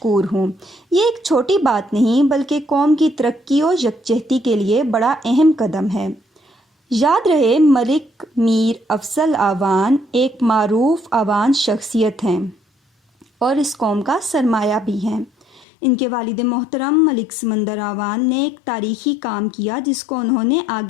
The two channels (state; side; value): drops out; right; at 15.7 s